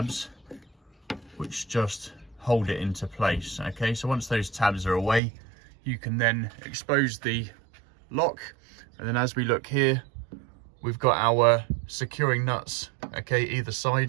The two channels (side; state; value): left; drops out; at 5.2 s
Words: which just hold it into place. Okay, so once those tabs are away, you can then expose the lock, and then as we look here, we've got our securing nuts, okay, either